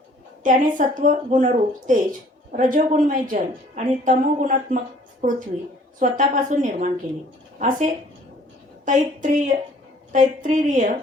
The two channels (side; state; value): both; normal; correlation 0.56